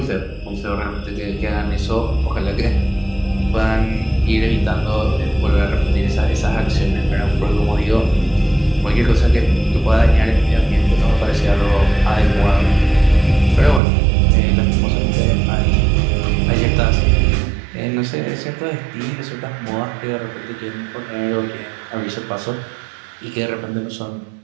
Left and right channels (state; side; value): drops out; left; at 13.8 s